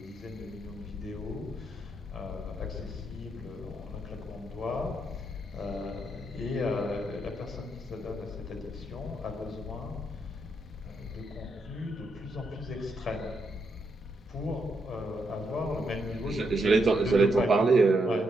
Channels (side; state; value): both; normal; correlation 0.79